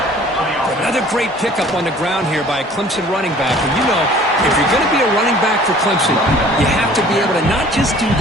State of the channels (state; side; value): normal; both; correlation 0.51